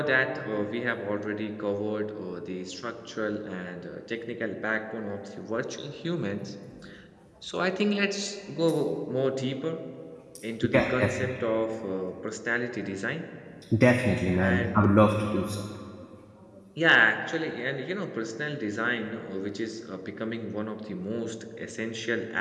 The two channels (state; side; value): identical; both; correlation 1.00